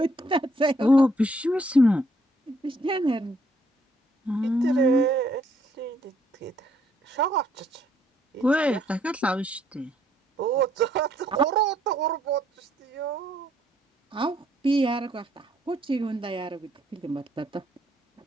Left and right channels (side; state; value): both; normal; correlation 0.69